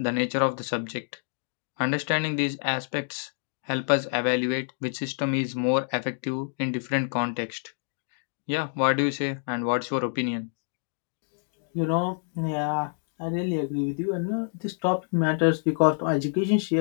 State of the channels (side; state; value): right; silent; digital silence